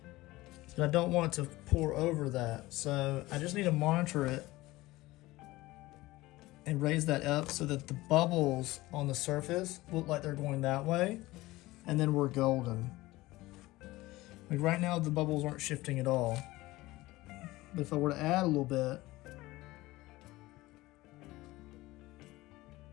But I don't want it to pour over that. So I just need to monitor it and raise that up so that the bubbles on the surface look like they're going that way. And then we're golden. Like right now the bubbles aren't shifting at all. But if I were to add a little bit,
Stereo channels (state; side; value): quieter; right; 18.9 dB